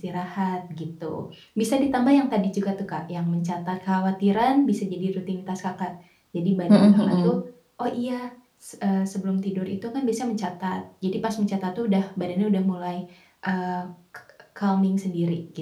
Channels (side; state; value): both; identical; correlation 1.00